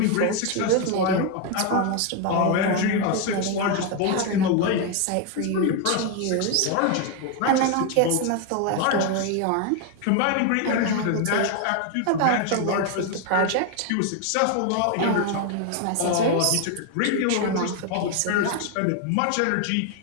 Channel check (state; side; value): different; both; correlation 0.01